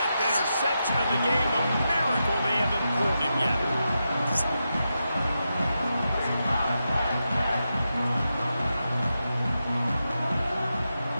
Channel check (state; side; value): inverted; both; correlation -0.88